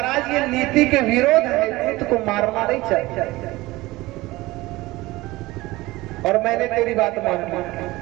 ये नीति के विरोध है, दूत को मारना नहीं चाहिए। और मैंने तेरी बात मान ली,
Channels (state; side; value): quieter; left; 19.6 dB